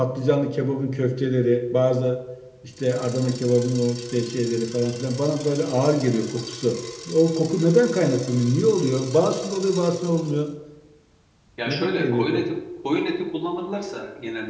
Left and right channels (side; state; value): both; identical; correlation 1.00